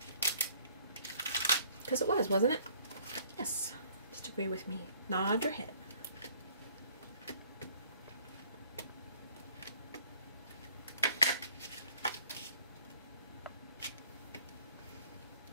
Because it was, wasn't it? Yes. Just agree with me. Nod your head.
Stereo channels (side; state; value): both; inverted; correlation -0.59